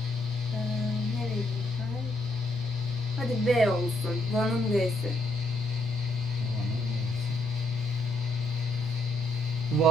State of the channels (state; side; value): normal; both; correlation 0.73